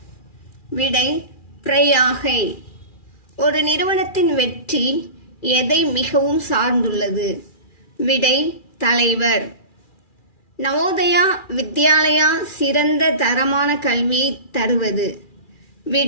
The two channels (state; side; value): late; right; 2.4 ms